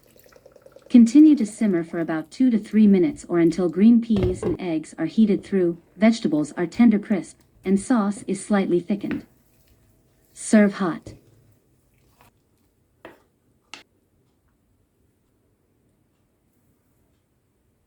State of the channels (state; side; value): identical; both; correlation 1.00